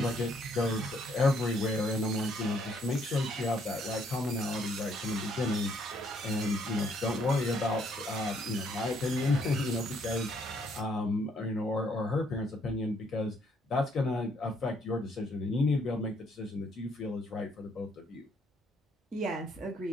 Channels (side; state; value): both; normal; correlation 0.68